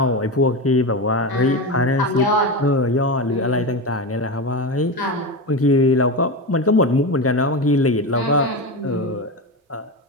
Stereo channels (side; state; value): both; normal; correlation 0.19